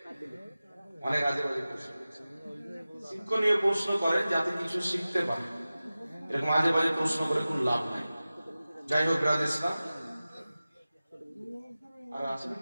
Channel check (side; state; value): both; inverted; correlation -0.96